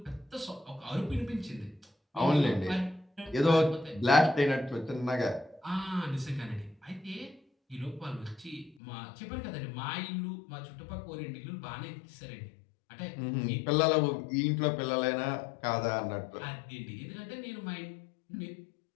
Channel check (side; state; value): right; drops out; at 8.8 s